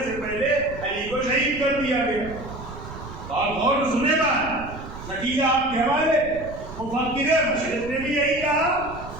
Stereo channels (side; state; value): right; noise; rumble, 13 dB below the sound